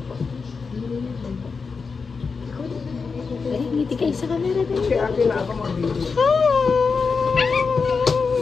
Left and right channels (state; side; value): quieter; right; 5.0 dB